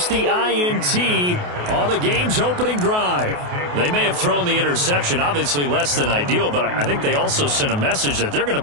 the INT on the game's opening drive. They may have thrown the interception, obviously less than ideal, but I think they also sent a message that they're going to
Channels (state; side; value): late; left; 28 ms